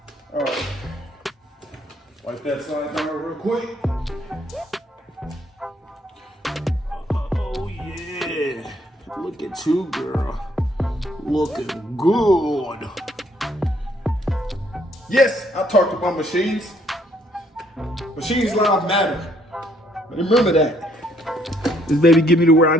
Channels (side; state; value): both; normal; correlation 0.67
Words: All right, wipe that side down real quick. Oh yeah, look at you, girl. Looking good. Yes, I talked about machines. Machines lives matter. But remember that. This baby get me to where I